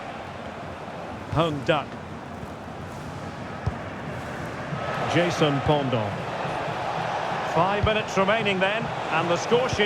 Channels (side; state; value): both; identical; correlation 1.00